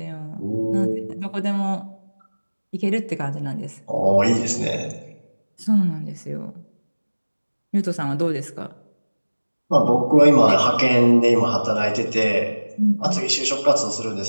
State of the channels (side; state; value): both; inverted; correlation -1.00